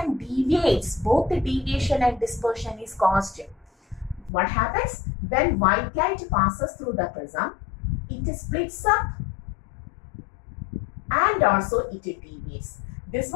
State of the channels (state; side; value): drops out; right; at 4.3 s